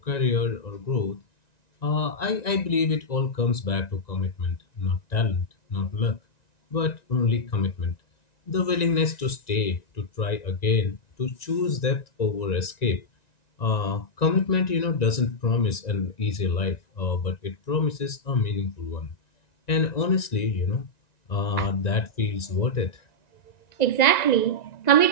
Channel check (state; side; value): late; right; 1.9 ms